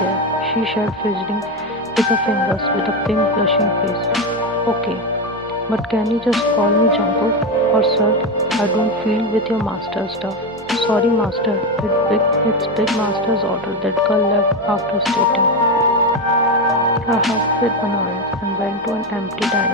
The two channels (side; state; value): both; normal; correlation 0.13